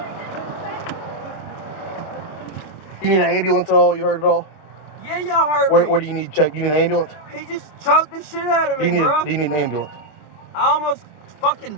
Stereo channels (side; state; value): right; late; 26 ms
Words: You need an ambulance at all? You heard it all? Yeah, y'all heard me. Where do you need check? You need an ambulance? He just choked the shit out of Do me, you bro. need an ambulance? I almost fucking